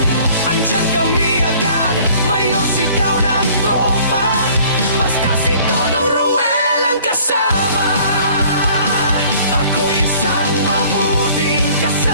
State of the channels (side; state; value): both; inverted; correlation -0.53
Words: andyan kami agad, mayor sigaw ng tropa. Basta si Dodong Ruel ang kasama. Ako isang mabuting